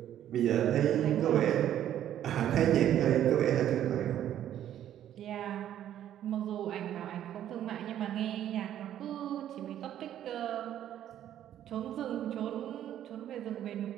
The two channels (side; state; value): left; quieter; 11.2 dB